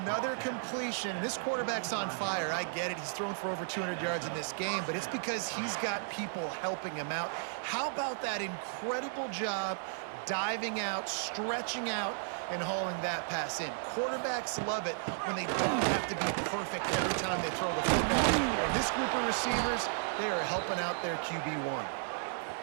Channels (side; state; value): left; silent; digital silence